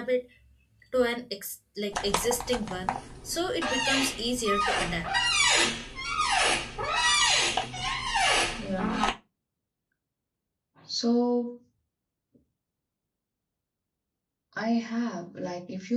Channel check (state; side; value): identical; both; correlation 1.00